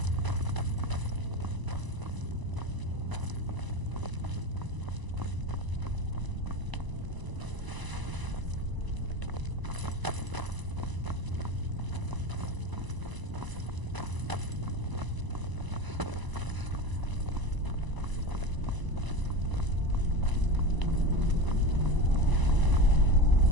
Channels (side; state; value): left; late; 1.0 ms